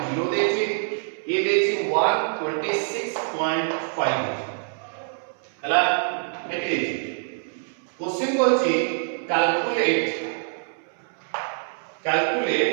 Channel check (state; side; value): silent; left; 62 dB below the other